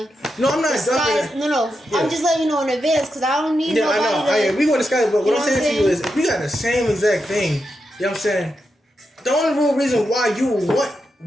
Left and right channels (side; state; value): both; normal; correlation 0.86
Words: No, I'm not dropping. No. Yeah. I'm just letting you know in advance because I don't need nobody. I know. We want to discuss, but what I'm saying to you is, if we got the same exact thing, you know what I'm saying? The only real reason why you want